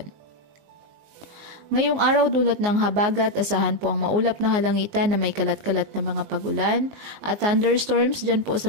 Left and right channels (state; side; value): late; left; 19 ms